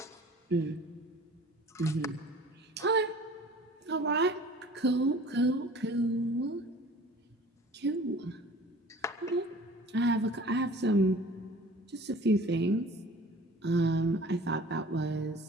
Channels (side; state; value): both; normal; correlation 0.46